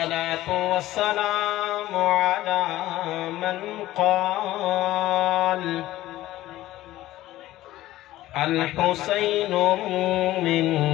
والسلام على من قال الحسين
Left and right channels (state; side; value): quieter; right; 15.6 dB